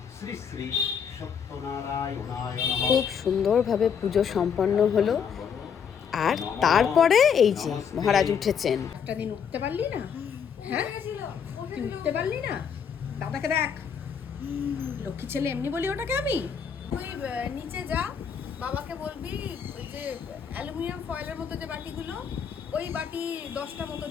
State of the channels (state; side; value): quieter; right; 7.2 dB